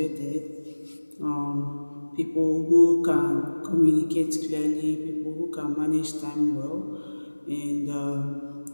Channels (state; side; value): inverted; both; correlation -1.00